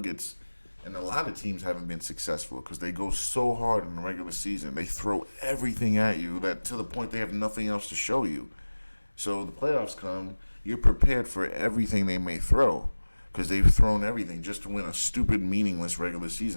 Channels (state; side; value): inverted; both; correlation -1.00